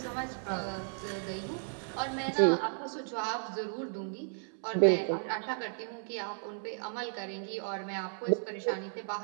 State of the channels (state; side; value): silent; left; digital silence